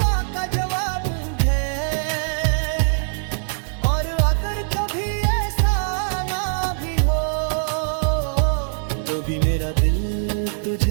का जवाब है, और अगर कभी ऐसा ना भी हो, तो भी मेरा दिल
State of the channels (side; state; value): left; silent; 64 dB below the other